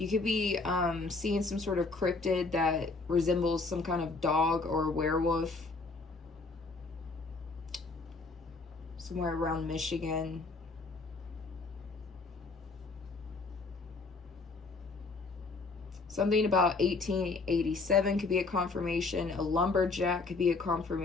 could be seeing some sort of cryptid that resembles some kind of dog or werewolf. Somewhere around Michigan. Something about 1887 could be a confirmation. A lumberjack could be a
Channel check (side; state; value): right; quieter; 3.8 dB